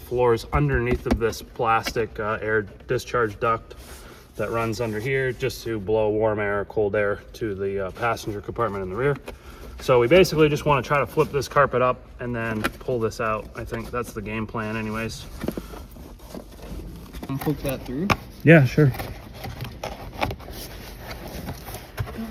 underneath of this plastic air discharge duct that runs under here just to blow warm air or cold air to the passenger compartment in the rear. So we basically just want to try to flip this carpet up and then pull this out. I think that's the game plan anyways. And poke that through? Yeah, sure.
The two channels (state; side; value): identical; both; correlation 1.00